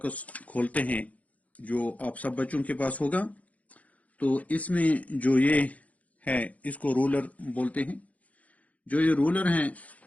کھولتے ہیں جو آپ سب بچوں کے پاس ہوگا، تو اس میں جو یہ ہے اس کو رولر بولتے ہیں. جو یہ رولر ہیں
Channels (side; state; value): right; late; 0.070 ms